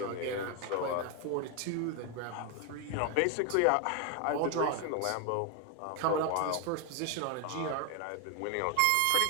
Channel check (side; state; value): both; different; correlation 0.01